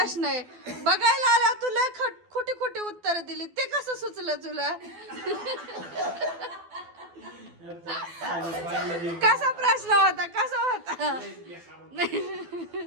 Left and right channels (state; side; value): late; left; 12 ms